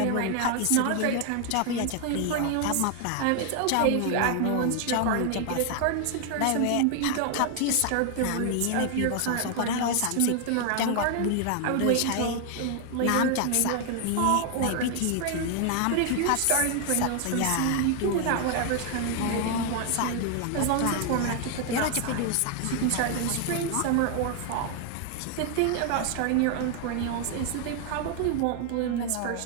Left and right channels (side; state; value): both; different; correlation 0.00